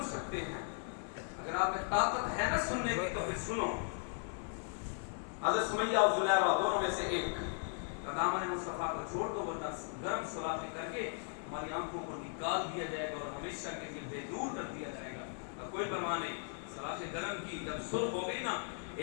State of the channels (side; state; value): right; silent; 53 dB below the other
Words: سکتے ہیں، اگر آپ میں طاقت ہے نا سننے کی تو پھر سنو۔ حضرت سمیہ اور زلیخا دونوں میں سے ایک دامن مصطفیٰ کو چھوڑ دو ورنہ گرم سلاخیں کر کے ہماری آنکھوں کو نکال دیا جائے گا اور ہمیشہ کے لیے بے دور کر دیا جائے گا۔ کوئی پرواہ نہیں، سلاخیں گرم کی جب سرخ ہو گئی نا،